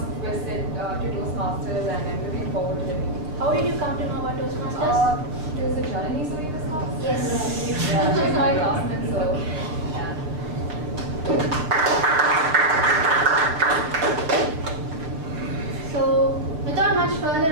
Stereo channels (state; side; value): late; left; 6.5 ms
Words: visit to Toastmasters and I'm looking forward to the meeting. How did you come to know about Toastmasters? Is it Janani who in this class? Yes. She's my classmate, so yeah. So, without much further